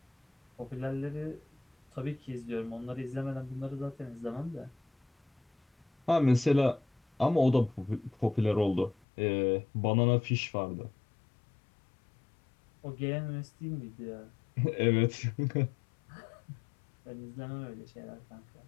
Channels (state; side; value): drops out; right; at 9.0 s